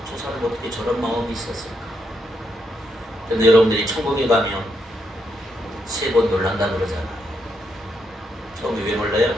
저 사람 어떻게 저런 마음이 있었을까? 근데 여러분들이 천국에 가면 3번 놀란다 그러잖아요. 처음에 왜 놀라요?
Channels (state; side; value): normal; both; correlation 0.79